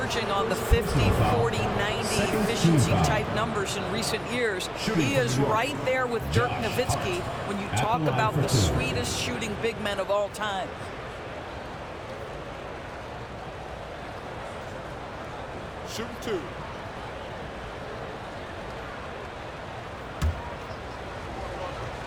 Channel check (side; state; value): both; identical; correlation 1.00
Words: on the 50, 40, 90 efficiency type numbers in recent years. He is right there with Dirk Nowitzki when you talk about the sweetest shooting big men of all time. Shooting 2.